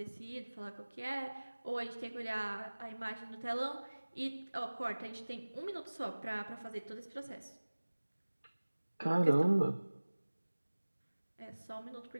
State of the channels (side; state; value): both; inverted; correlation -1.00